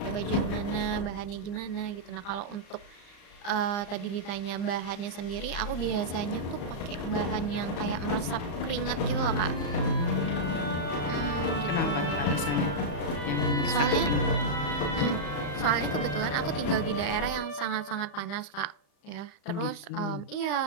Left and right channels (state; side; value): late; right; 35 ms